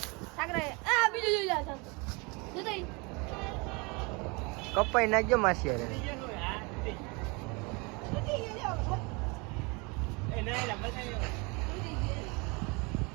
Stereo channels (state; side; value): quieter; left; 28.7 dB